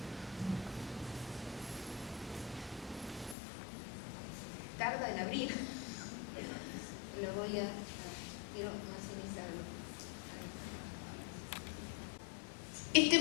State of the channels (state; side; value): drops out; right; at 3.4 s